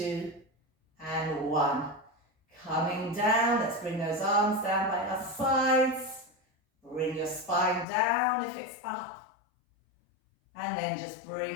and 1. Coming down, let's bring those arms down by our sides. Bring your spine down if it's up. And then just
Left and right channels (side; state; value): right; drops out; at 7.9 s